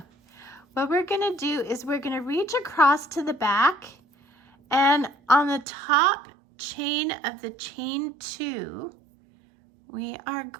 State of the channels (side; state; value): left; drops out; at 5.7 s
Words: What we're gonna do is we're gonna reach across to the back, and on the top chain of the chain 2, we are